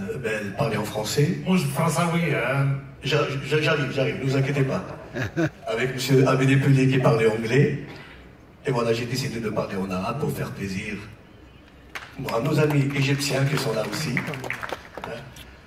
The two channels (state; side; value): identical; both; correlation 1.00